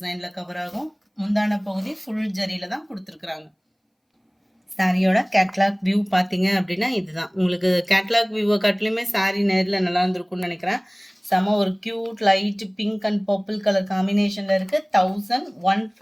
கவர் ஆகும். முந்தான பகுதி ஃபுல் ஜரியில் தான் கொடுத்துருக்குறாங்க. சாரியோட கேட்லாக் வியூ பார்த்தீங்க அப்படின்னா இதுதான். உங்களுக்கு கேட்லாக் வியூவை காட்டிலுமே சாரி நேரில் நல்லா இருந்திருக்கும்னு நினைக்கிறேன். செம ஒரு cute light pink and purple colour காம்பினேஷனில் இருக்குது.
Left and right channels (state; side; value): identical; both; correlation 1.00